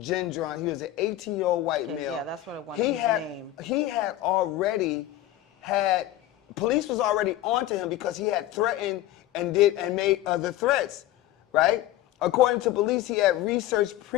He was an 18-year-old white male. Yeah, that's what I wanted, his name. He had already had, police was already onto him because he had threatened and made other threats, right? According to police, he had researched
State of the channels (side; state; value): right; quieter; 14.2 dB